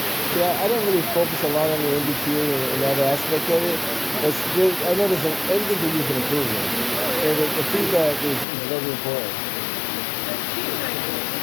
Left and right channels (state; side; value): drops out; right; at 8.5 s